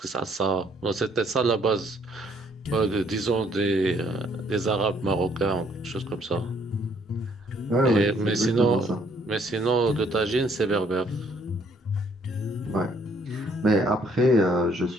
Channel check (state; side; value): normal; both; correlation 0.66